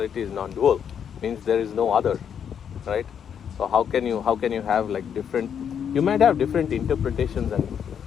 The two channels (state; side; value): quieter; right; 8.1 dB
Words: is non-dual, means there is no other, right? So how can you have like different? You might have different interpretations and